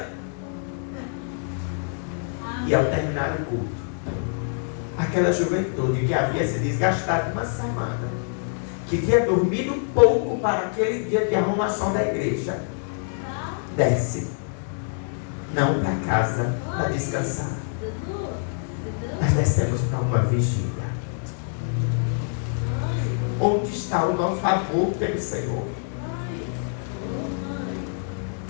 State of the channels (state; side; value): silent; right; 61 dB below the other